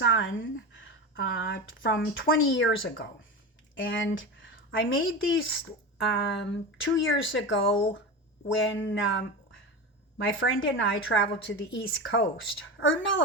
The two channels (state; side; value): normal; both; correlation 0.23